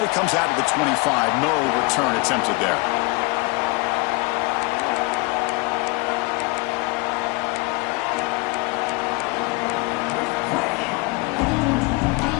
it comes out of the 25. No return attempted there.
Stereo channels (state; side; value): quieter; right; 26.5 dB